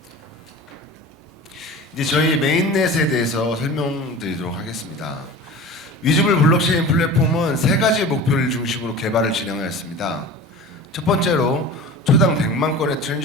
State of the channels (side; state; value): both; normal; correlation 0.36